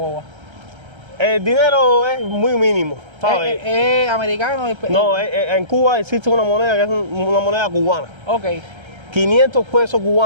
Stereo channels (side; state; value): left; late; 1.3 ms